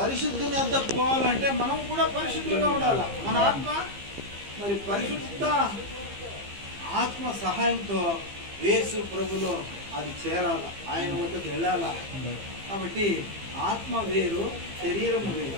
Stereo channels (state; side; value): late; left; 15 ms